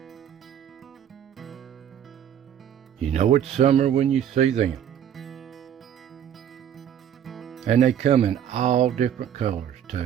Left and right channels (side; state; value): left; quieter; 9.7 dB